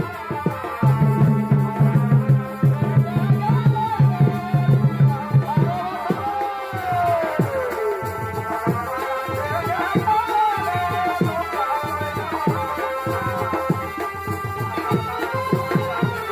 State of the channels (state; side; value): identical; both; correlation 1.00